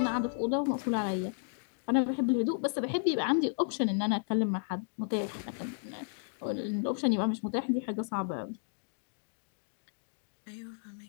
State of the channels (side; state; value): right; silent; digital silence